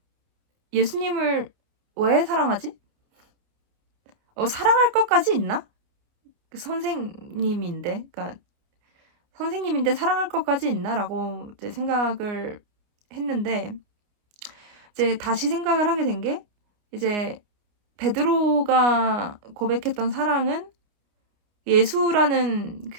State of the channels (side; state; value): left; late; 29 ms